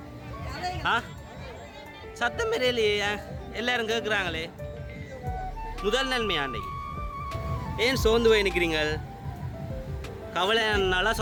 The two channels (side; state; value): both; identical; correlation 1.00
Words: சத்தம் பெரியலையே, எல்லாரும் கேட்குறாங்களே. முதல் நன்மையா அன்றைக்கு? ஏன் சோர்ந்து போய் நிற்கிறீங்கள்? கவலை நாளா